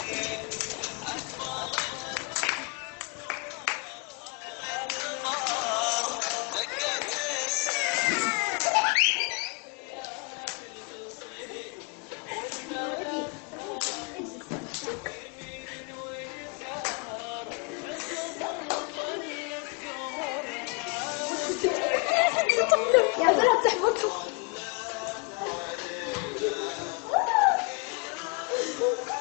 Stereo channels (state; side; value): quieter; right; 32.7 dB